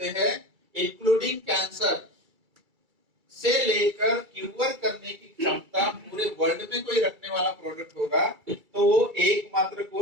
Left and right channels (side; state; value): left; late; 2.3 ms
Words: हैं इंक्लूडिंग कैंसर से लेकर क्यूर करने की क्षमता पूरे वर्ल्ड में कोई रखने वाला प्रोडक्ट होगा तो वो एकमात्र